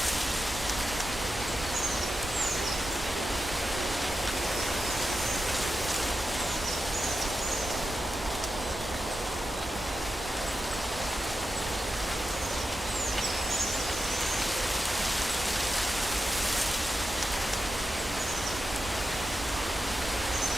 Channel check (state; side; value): normal; both; correlation 0.90